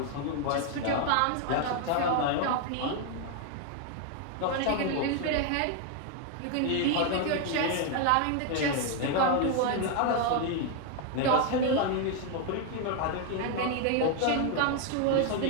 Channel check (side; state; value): both; different; correlation 0.01